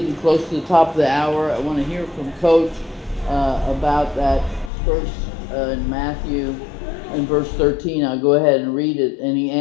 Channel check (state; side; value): drops out; right; at 4.7 s